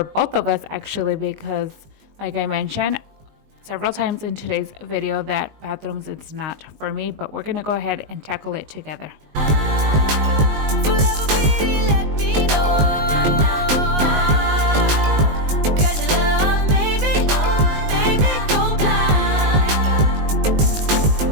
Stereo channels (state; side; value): late; left; 20 ms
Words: both of us actually, because like I mentioned several times in today's video that bathrooms, it's not for me, but we're going to go ahead and tackle it together.